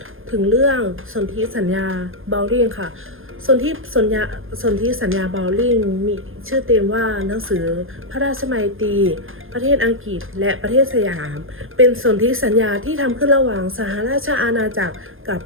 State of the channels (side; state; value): left; late; 0.59 ms